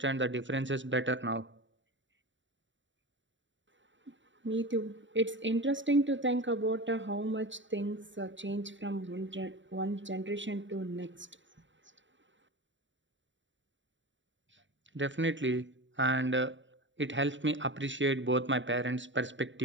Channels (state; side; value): late; left; 0.54 ms